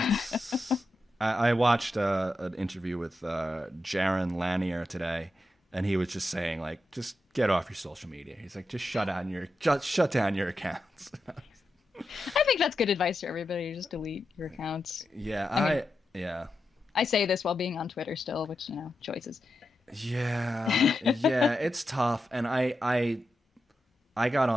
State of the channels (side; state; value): both; normal; correlation 0.88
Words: I watched an interview with Jaron Lanier today, and he was just saying, like, just get off your social media. He's like, just shut down your accounts. I think that's good advice for everybody. Just delete your accounts. Yeah, I say this while being on Twitter still, which, choices. Yeah, it's tough. And I got